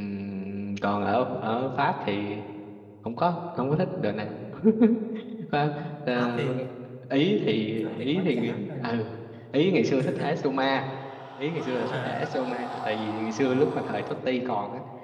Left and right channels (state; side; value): identical; both; correlation 1.00